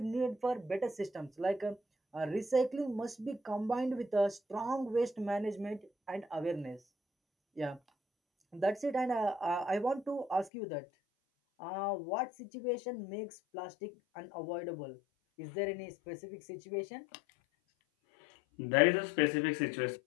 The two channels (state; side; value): drops out; right; at 10.5 s